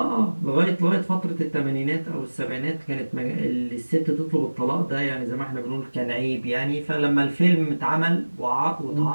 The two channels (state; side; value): inverted; both; correlation -1.00